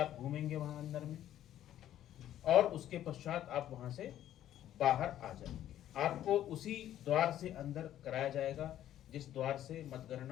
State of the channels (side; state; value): right; quieter; 12.0 dB